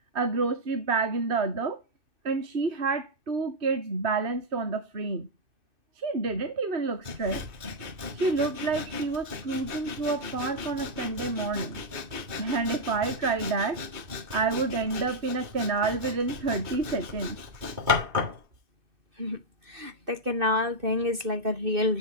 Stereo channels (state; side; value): late; left; 2.6 ms